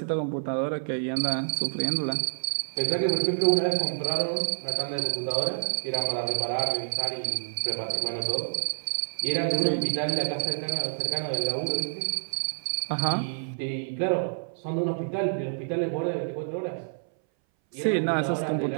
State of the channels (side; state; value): left; silent; 59 dB below the other